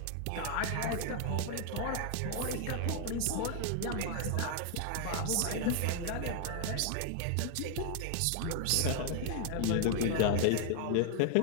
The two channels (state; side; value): different; both; correlation 0.00